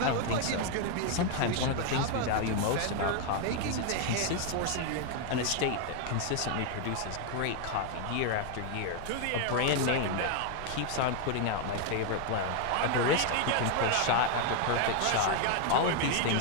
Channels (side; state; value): both; different; correlation 0.01